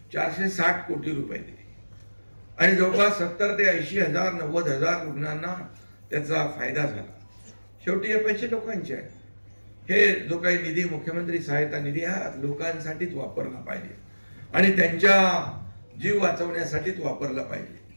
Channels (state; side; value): inverted; both; correlation -1.00